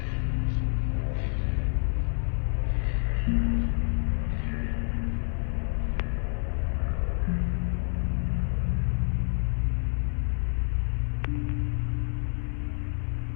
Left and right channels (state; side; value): silent; right; 55 dB below the other